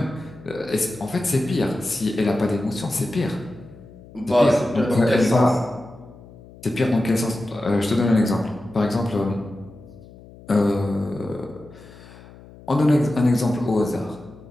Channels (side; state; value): left; noise; hum, 21 dB below the sound